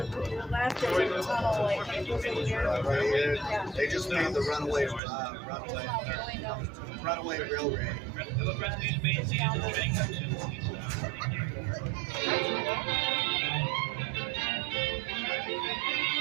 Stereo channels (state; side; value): drops out; left; at 5.0 s